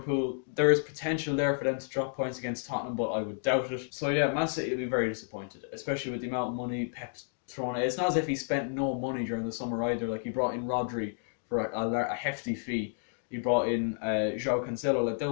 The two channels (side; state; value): right; silent; digital silence